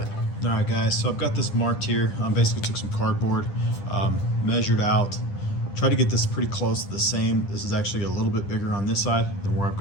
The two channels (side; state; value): right; late; 10 ms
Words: it. All right, guys, so I've got this marked here. Basically took some cardboard, measured out, tried to get this pretty close to the same. This is actually a little bit bigger on this side than where I've